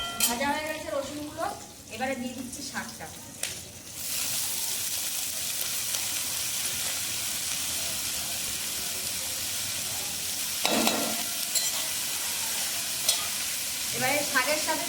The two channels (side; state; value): both; identical; correlation 1.00